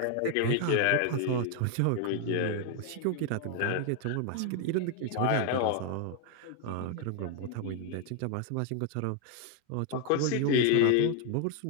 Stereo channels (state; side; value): different; both; correlation 0.00